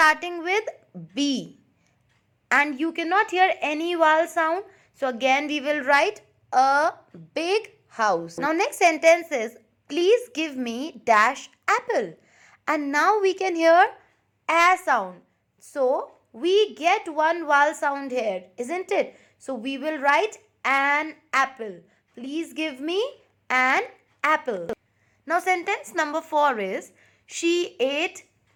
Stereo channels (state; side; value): identical; both; correlation 1.00